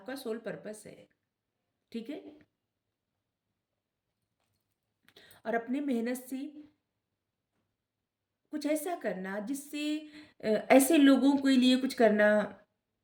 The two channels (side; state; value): both; identical; correlation 1.00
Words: सोल पर्पस है, ठीक है। और अपने मेहनत से कुछ ऐसा करना जिससे ऐसे लोगों के लिए कुछ करना